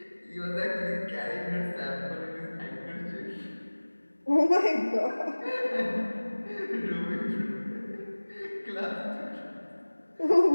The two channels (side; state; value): both; inverted; correlation -1.00